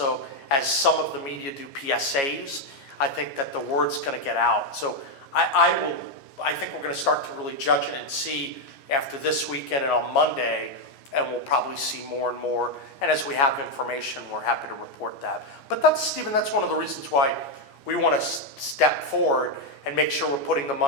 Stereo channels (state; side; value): late; right; 14 ms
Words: as some of the media do PSAs, I think that the word's going to get out. So I think we're going to start to really judge it and see after this weekend and on Monday, and we'll probably see more and more. And as we have information, we're happy to report that. But Stephen, that's one of the reasons why we want to step forward and make sure we're putting the